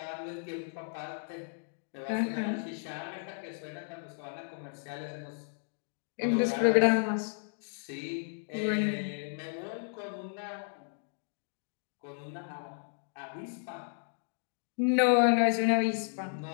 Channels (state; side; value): silent; right; digital silence